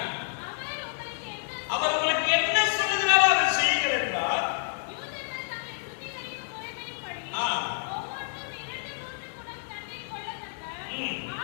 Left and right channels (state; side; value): silent; right; digital silence